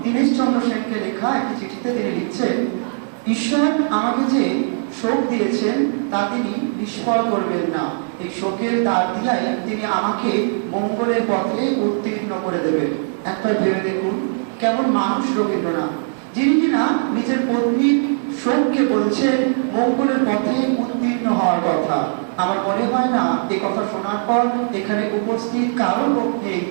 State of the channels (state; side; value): silent; left; 56 dB below the other